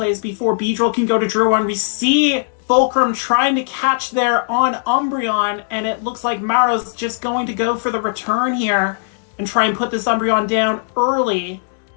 before Beedrill can go to Drew 1. We see Fulcrum trying to catch there on Umbreon, and it looks like Maro's just going to go for the return here and try and put this Umbreon down early.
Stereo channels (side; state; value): right; silent; digital silence